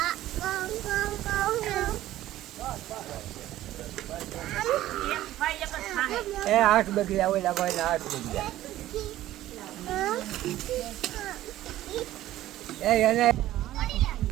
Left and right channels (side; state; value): left; quieter; 14.4 dB